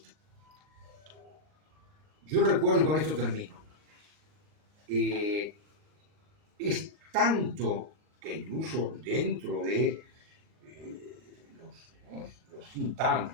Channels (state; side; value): late; left; 39 ms